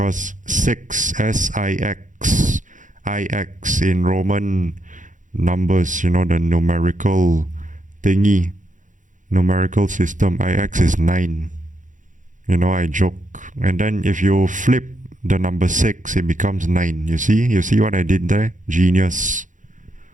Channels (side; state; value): left; late; 0.37 ms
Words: 6, S-I-X, I-X in Roman numbers, the numerical thingy, numerical system, I-X is 9. I joke. And then if you flip the number 6, it becomes 9. You see what I did there? Genius.